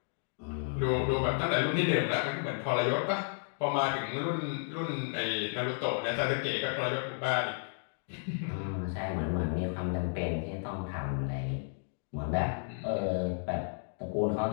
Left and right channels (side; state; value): right; silent; digital silence